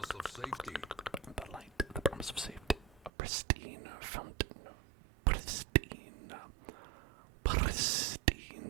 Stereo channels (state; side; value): drops out; left; at 3.1 s